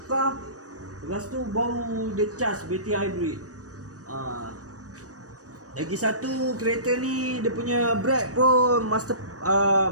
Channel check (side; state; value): left; late; 0.66 ms